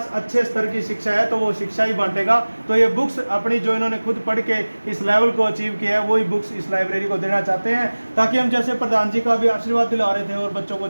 अच्छे स्तर की शिक्षा है तो वो शिक्षा ही बांटेगा। तो ये बुक्स अपनी जो इन्होंने खुद पढ़ के इस लेवल को अचीव किया है वही बुक्स इस लाइब्रेरी को देना चाहते हैं, ताकि हम जैसे प्रधान जी का भी आशीर्वाद दिला रहे थे और बच्चों को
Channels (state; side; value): inverted; both; correlation -1.00